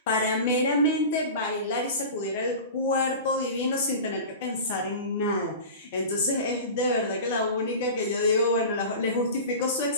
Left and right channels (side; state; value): both; inverted; correlation -0.33